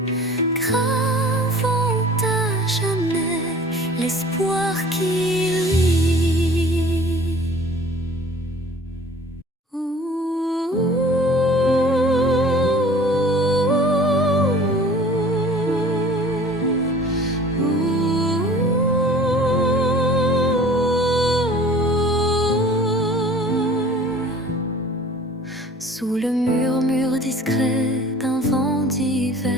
gravant à jamais l'espoir qui luit. Sous le murmure discret d'un vent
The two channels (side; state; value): both; normal; correlation 0.47